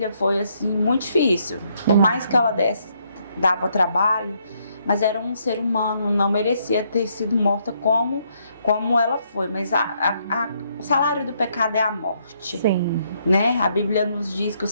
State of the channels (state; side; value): inverted; both; correlation -0.73